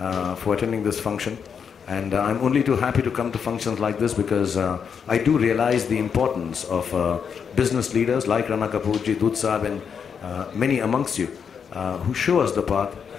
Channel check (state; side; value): quieter; right; 6.9 dB